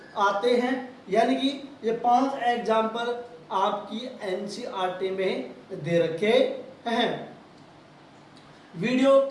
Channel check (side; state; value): both; identical; correlation 1.00